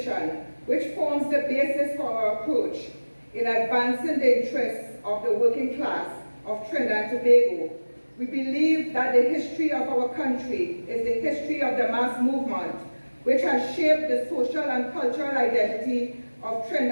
which forms the basis for our approach in advancing the interests of the working class of Trinidad and Tobago. We believe that the history of our country is the history of the mass movement, which has shaped the social and cultural identity of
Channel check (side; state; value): both; inverted; correlation -1.00